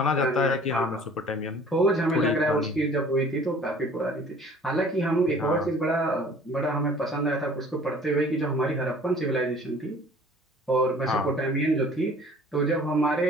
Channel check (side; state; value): both; normal; correlation 0.50